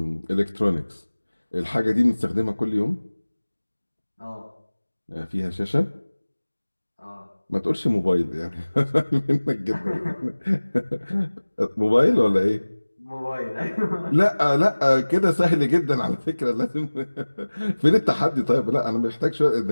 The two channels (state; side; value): inverted; both; correlation -1.00